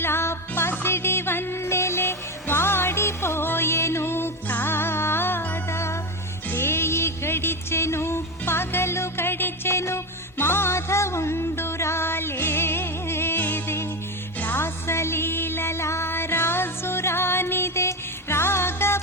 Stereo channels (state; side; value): normal; both; correlation 0.16